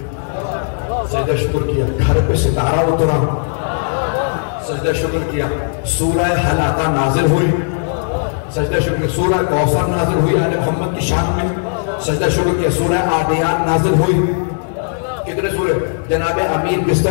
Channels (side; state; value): right; silent; digital silence